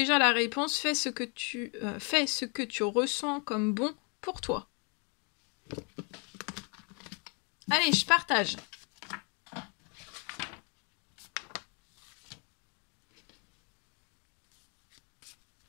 la réponse. Fais ce que tu ressens comme bon pour toi. Allez, je partage.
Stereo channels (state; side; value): quieter; right; 35.7 dB